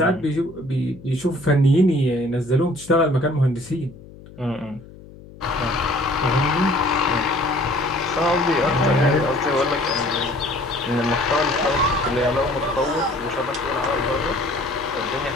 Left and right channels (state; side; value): noise; left; hum, 19 dB below the sound